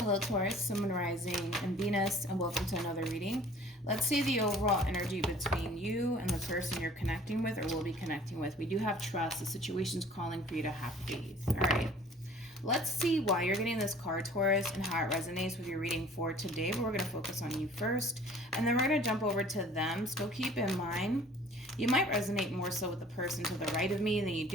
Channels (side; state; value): both; normal; correlation 0.50